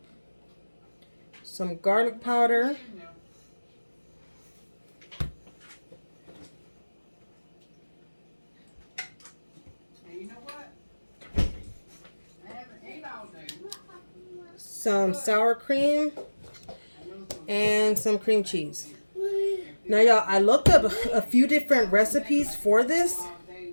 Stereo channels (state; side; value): inverted; both; correlation -1.00